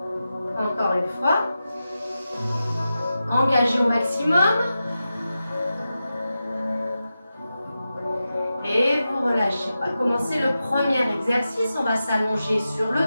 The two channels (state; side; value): inverted; both; correlation -0.91